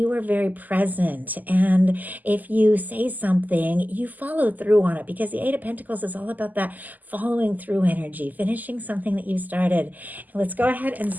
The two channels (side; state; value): left; late; 0.082 ms